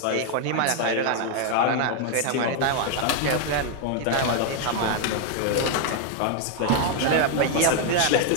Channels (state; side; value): different; both; correlation 0.00